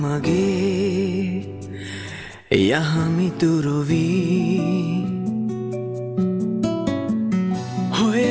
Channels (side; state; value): both; identical; correlation 1.00